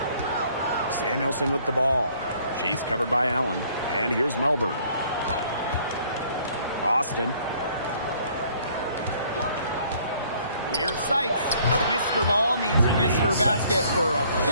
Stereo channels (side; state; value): both; inverted; correlation -0.60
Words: Samuelson with the ball. She's covered by Allen. And here's Melbourne. Austin. Here's Sykes. Mr. Ball meets Mr. Basket for a